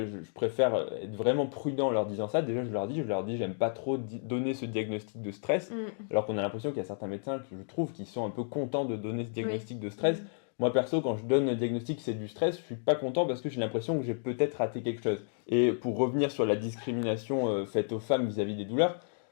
préfère être vraiment prudent en leur disant ça. Déjà, je leur dis, j'aime pas trop donner ce diagnostic de stress, alors qu'on a l'impression qu'il y a certains médecins que je trouve qui sont un peu contents de donner ce diagnostic de stress. Moi, perso, quand je donne un diagnostic c'est du stress, je suis pas content parce que j'ai l'impression que j'ai peut-être raté quelque chose. Et pour revenir sur la discrimination faite aux femmes vis-à-vis des douleurs,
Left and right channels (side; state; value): right; silent; digital silence